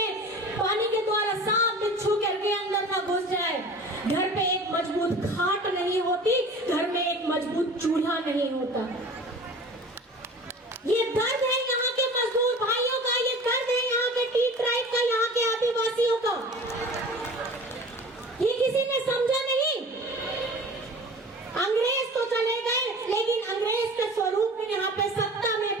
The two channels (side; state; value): both; normal; correlation 0.41